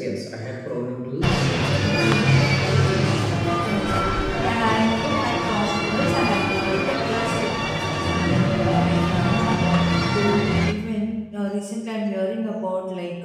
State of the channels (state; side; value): identical; both; correlation 1.00